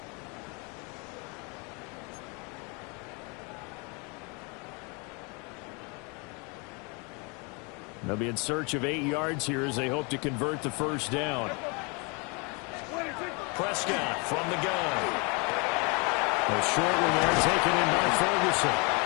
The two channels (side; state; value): right; quieter; 31.4 dB